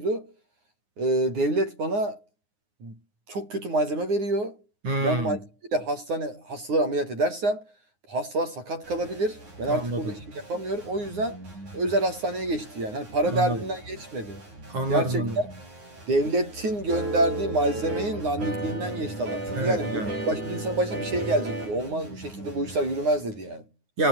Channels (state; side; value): late; left; 9.6 ms